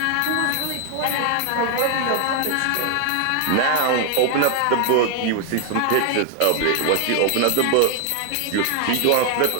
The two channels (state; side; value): different; both; correlation 0.01